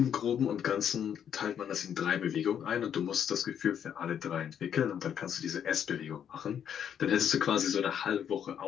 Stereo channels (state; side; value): quieter; right; 8.8 dB